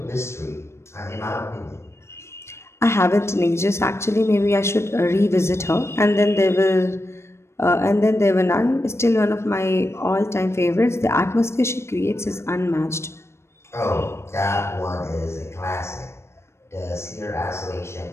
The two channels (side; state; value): right; late; 0.13 ms